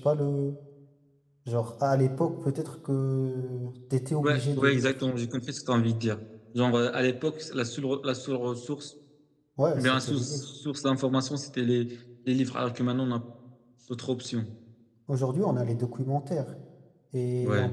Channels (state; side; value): identical; both; correlation 1.00